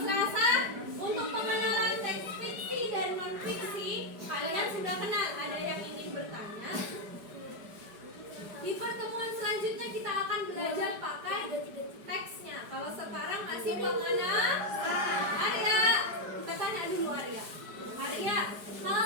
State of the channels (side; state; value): left; late; 4.9 ms